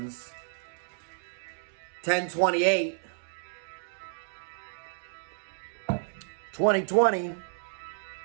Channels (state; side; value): silent; left; 57 dB below the other